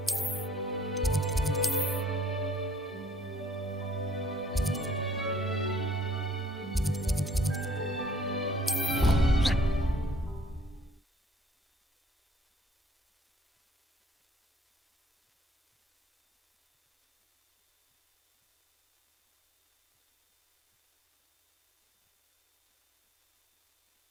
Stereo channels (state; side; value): normal; both; correlation 0.57